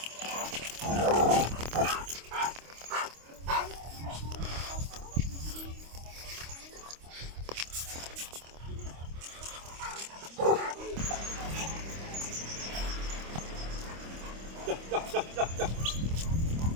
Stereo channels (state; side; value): late; left; 25 ms